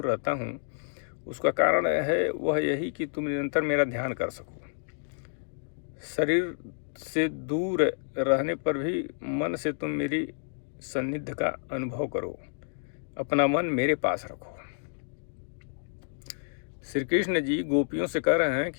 रहता हूँ उसका कारण है वह यही कि तुम निरंतर मेरा ध्यान कर सको। शरीर से दूर रहने पर भी मन से तुम मेरी सान्निध्य का अनुभव करो, अपना मन मेरे पास रखो। श्री कृष्ण जी गोपियों से कह रहे हैं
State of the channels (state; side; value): silent; right; digital silence